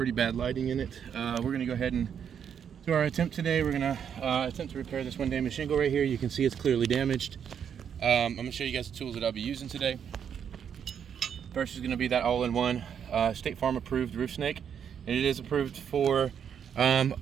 bad lighting in it, we're going to go ahead and do our attempt today. We're going to attempt to repair this one damaged shingle right here. You can see it's clearly damaged. I'm going to show you guys the tools that I'll be using today. First is going to be that all-in-one State Farm approved roof snake. And it is approved for,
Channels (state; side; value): quieter; left; 8.0 dB